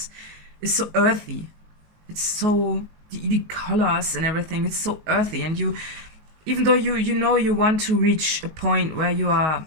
so earthy. It's so the colors and everything. It's so earthy, and even though you want to reach a point where you are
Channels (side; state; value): left; late; 19 ms